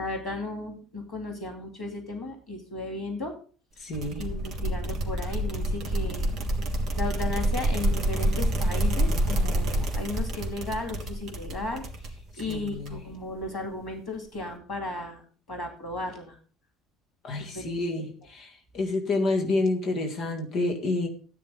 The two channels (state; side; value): normal; both; correlation 0.67